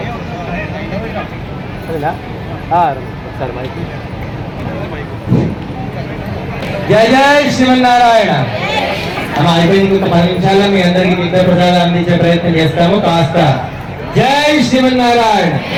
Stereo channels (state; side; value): identical; both; correlation 1.00